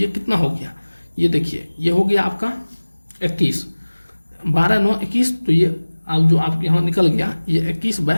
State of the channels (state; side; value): inverted; both; correlation -1.00